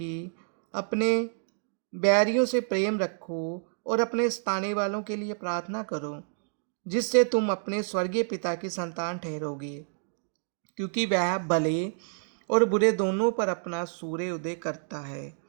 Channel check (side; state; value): left; silent; digital silence